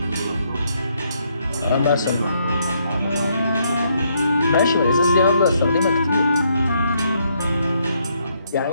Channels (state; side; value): inverted; both; correlation -0.73